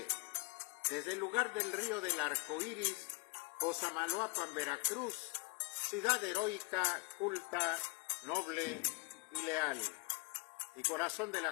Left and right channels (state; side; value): quieter; right; 26.7 dB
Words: desde el lugar del río del Arco Iris, Cosamaloapan, Veracruz, ciudad heroica, culta, noble y leal, y corazón de